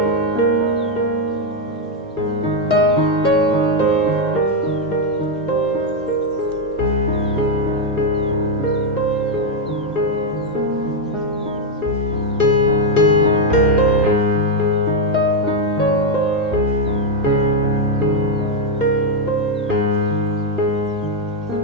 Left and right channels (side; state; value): both; normal; correlation 0.03